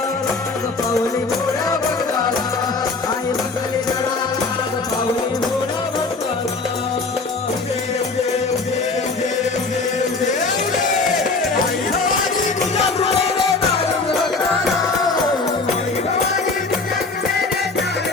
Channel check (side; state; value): right; quieter; 3.9 dB